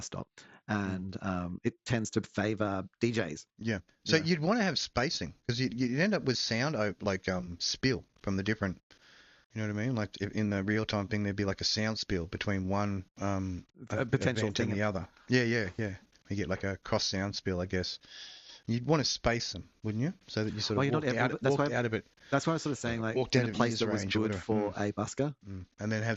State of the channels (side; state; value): both; identical; correlation 1.00